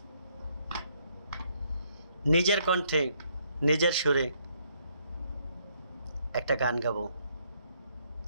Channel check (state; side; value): inverted; both; correlation -0.70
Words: নিজের কণ্ঠে নিজের সুরে একটা গান গাবো।